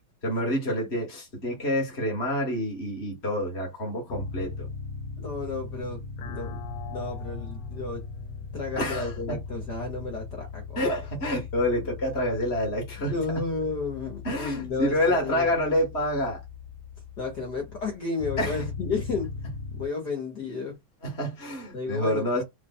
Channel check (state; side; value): late; right; 3.1 ms